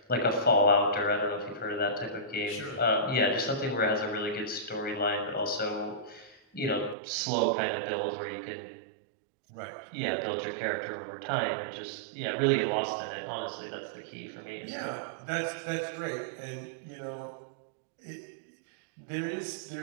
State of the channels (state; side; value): drops out; left; at 7.0 s